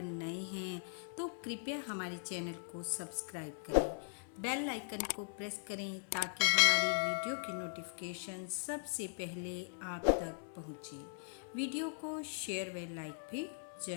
नए हैं तो कृपया हमारे चैनल को सब्सक्राइब करें, बेल आइकन को प्रेस करें ताकि हमारी वीडियो की नोटिफिकेशन सबसे पहले आप तक पहुंचे। वीडियो को शेयर व लाइक भी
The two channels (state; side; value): silent; right; digital silence